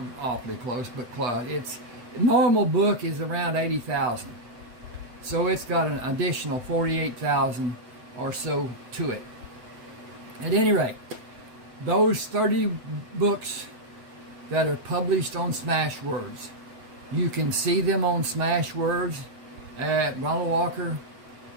awfully close, but close. Its normal book is around 80,000, so it's got an additional 48,000 or so to it. At any rate, those 30 books that are published on Smashwords, you can see them on Smashwords at Ronald Walker.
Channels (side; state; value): left; late; 7.8 ms